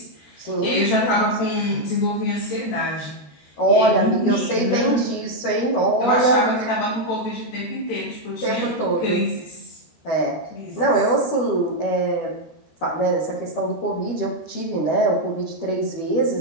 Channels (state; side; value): late; right; 13 ms